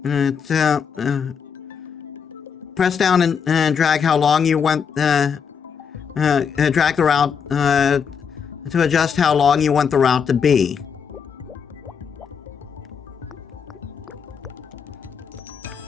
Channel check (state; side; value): quieter; right; 6.7 dB